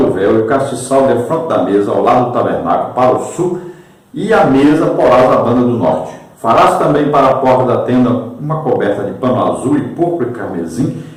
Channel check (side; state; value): both; identical; correlation 1.00